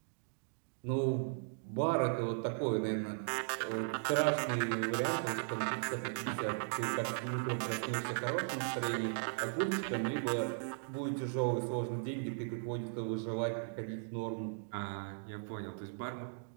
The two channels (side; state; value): left; silent; digital silence